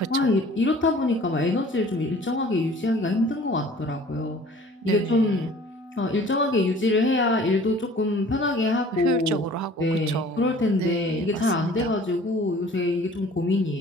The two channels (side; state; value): both; normal; correlation 0.49